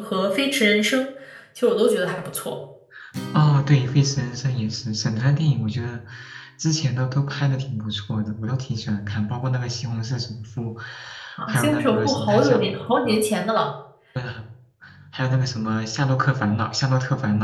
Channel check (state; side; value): identical; both; correlation 1.00